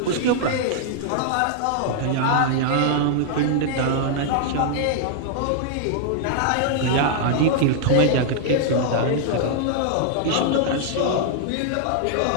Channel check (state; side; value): different; both; correlation -0.01